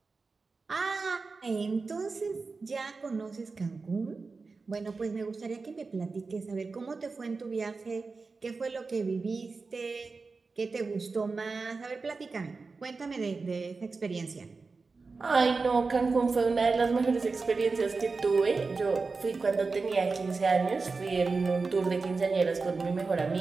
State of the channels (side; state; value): left; quieter; 4.2 dB